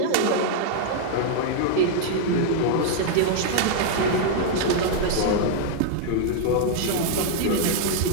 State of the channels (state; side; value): different; both; correlation -0.01